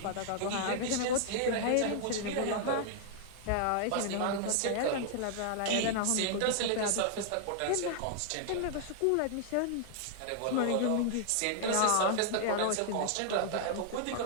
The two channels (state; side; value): different; both; correlation -0.01